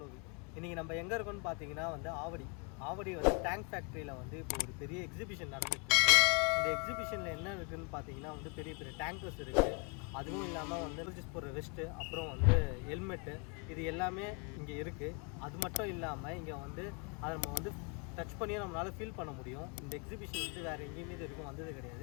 இன்றைக்கி நம்ம எங்கே இருக்கோன்னு பார்த்தீங்கன்னா வந்து ஆவடி வந்து டேங்க் ஃபேக்ட்ரியில் வந்து இப்போ ஒரு பெரிய எக்ஸிபிஷன் நடந்துகிட்ருக்கு. இந்த எக்ஸிபிஷனில் என்ன இருக்குதுன்னு பார்த்தீங்கன்னா வந்து பெரிய பெரிய டேங்கர்ஸ் இருக்குது. அதுவும் இல்லாமல் வந்து ரிஜிஸ் போடுற வெஸ்ட்டு, அப்புறம் வந்து ஹெல்மெட்டு, இது எல்லாமே இங்கே இருக்குது. அது மட்டும் இல்லாமல் இங்கே வந்து அதை நம்ம வந்து டச் பண்ணியும் நம்மளால் ஃபீல் பண்ண முடியும். இந்த எக்ஸிபிஷன் வந்து வேறு எங்கேயுமே இது வரைக்கும் வந்தது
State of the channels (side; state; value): right; quieter; 35.4 dB